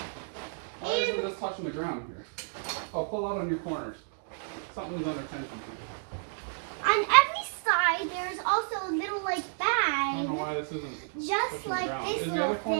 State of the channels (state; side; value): silent; left; digital silence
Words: Why isn't this touching the ground here? Oh, pull out on your corners. Something's under tension here. On every side, there's also a little like I don't know bag, why this isn't. just touching like the ground. this Is the little other